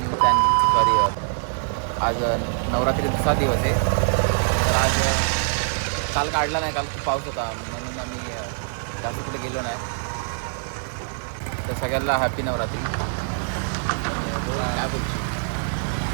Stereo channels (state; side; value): silent; left; digital silence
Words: channel. Sorry, आज नवरात्री दुसरा दिवस आहे. तर आज काल काढला नाही, काल खूप पाऊस होता म्हणून आम्ही जास्त कुठे गेलो नाही. तर सगळ्यांना हॅपी नवरात्री. आणि बोल काय बोलतो,